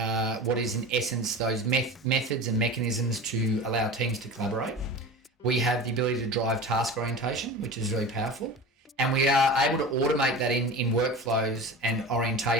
what is in essence those methods and mechanisms to allow teams to collaborate. We have the ability to drive task orientation, which is really powerful. And we are able to automate that in workflows and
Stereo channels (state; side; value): normal; both; correlation 0.33